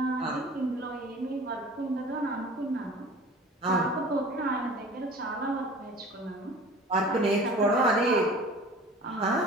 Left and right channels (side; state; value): both; normal; correlation 0.43